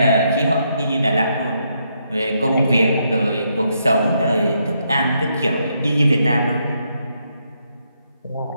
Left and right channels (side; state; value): both; inverted; correlation -0.77